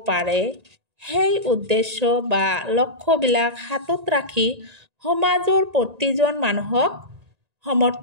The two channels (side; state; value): left; late; 1.9 ms